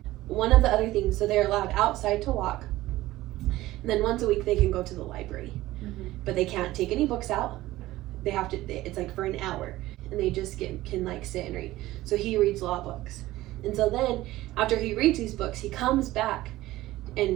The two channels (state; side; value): quieter; left; 16.7 dB